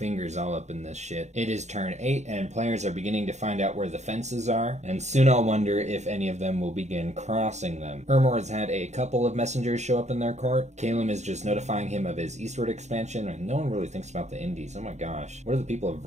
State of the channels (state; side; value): late; left; 0.33 ms